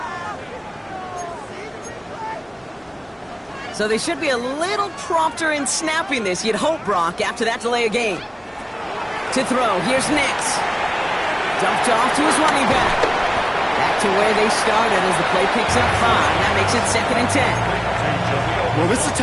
So they should be a little prompter in snapping this, you'd hope, Brock, after that delay of game. To throw, here's Nix. Dumped off to his running back. Back to where they started as the play picks up 5. That makes it second and 10. Well, this is the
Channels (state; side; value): identical; both; correlation 1.00